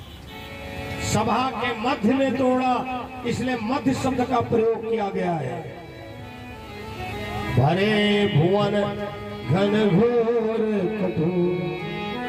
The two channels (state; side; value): identical; both; correlation 1.00